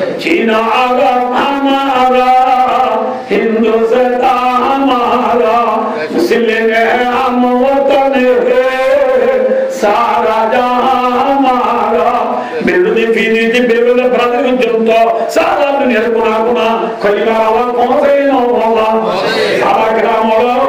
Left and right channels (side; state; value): both; identical; correlation 1.00